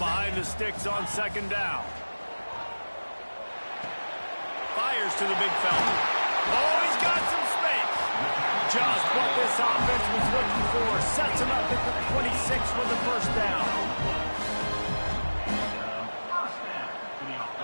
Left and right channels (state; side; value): inverted; both; correlation -1.00